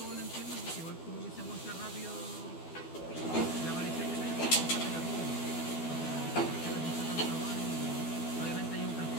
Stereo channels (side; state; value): right; late; 12 ms